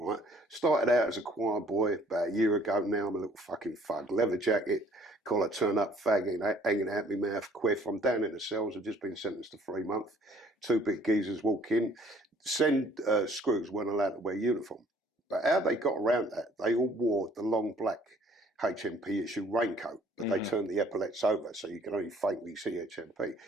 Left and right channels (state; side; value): normal; both; correlation 0.58